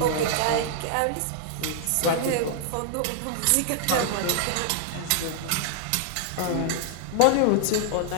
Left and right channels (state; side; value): different; both; correlation -0.01